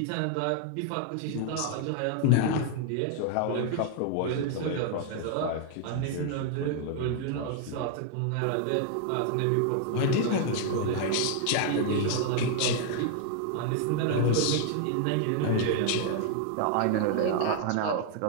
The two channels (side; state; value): both; different; correlation 0.00